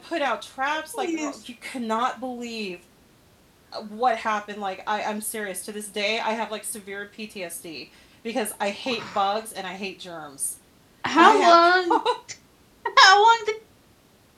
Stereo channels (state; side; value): identical; both; correlation 1.00